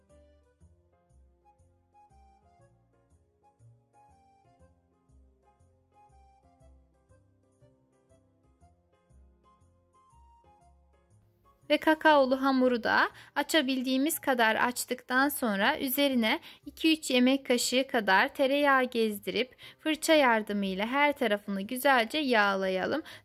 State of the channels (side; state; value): both; identical; correlation 1.00